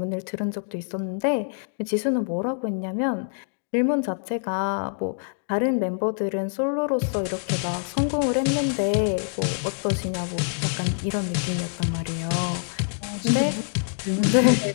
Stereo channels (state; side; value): silent; right; digital silence